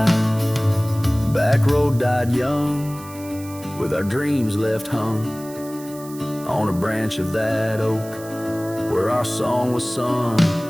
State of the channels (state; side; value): noise; right; hiss, 18 dB below the sound